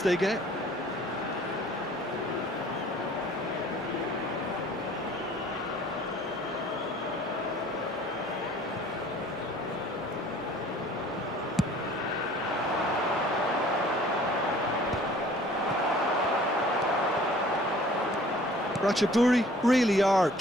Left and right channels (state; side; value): normal; both; correlation 0.52